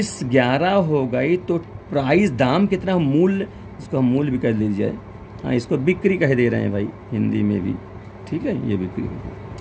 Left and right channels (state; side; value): identical; both; correlation 1.00